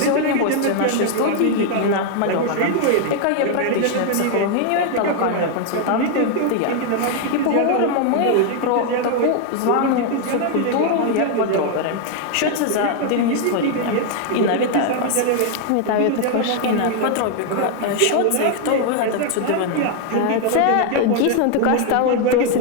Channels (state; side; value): different; both; correlation 0.00